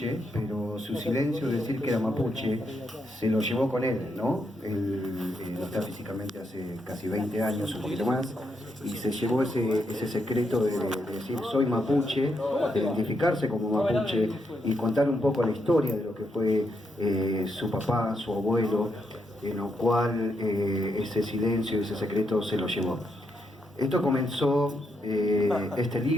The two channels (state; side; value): normal; both; correlation 0.80